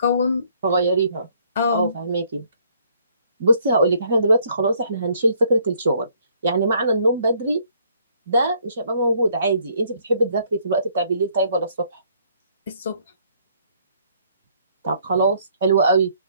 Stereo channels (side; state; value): both; inverted; correlation -0.65